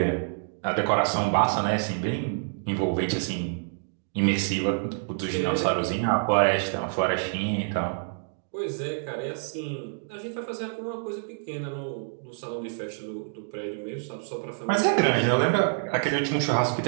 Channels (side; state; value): left; silent; digital silence